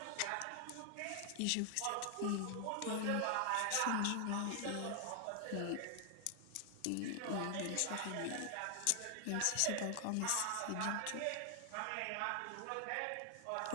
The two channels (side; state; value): both; different; correlation 0.00